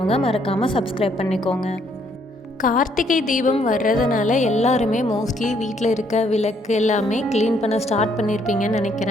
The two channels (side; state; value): both; normal; correlation 0.69